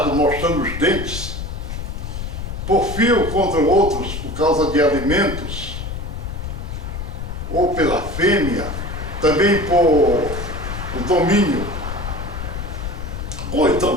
mostrando os dentes. Porfia contra outros por causa de alimentos, ou pela fêmea, também por o domínio, ou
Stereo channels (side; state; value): left; noise; rumble, 6 dB below the sound